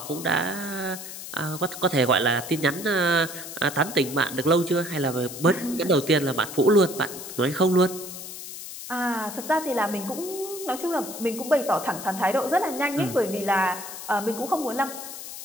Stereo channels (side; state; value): left; noise; hiss, 10 dB below the sound